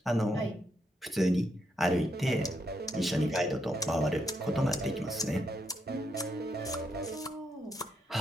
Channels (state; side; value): normal; both; correlation 0.79